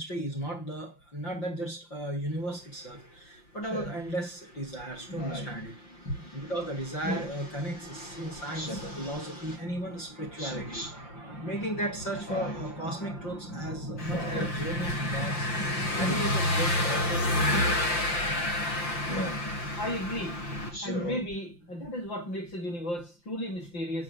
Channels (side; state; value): right; late; 5.8 ms